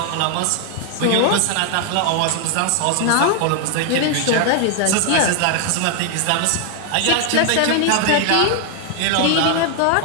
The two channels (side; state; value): both; different; correlation 0.00